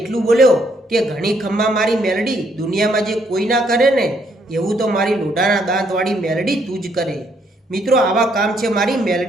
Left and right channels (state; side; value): normal; both; correlation 0.71